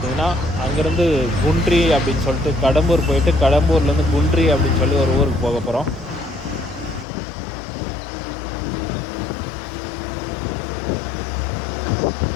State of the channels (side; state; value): right; drops out; at 7.1 s